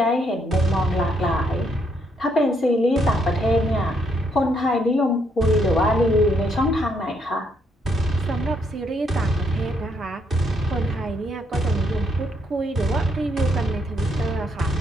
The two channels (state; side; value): normal; both; correlation 0.74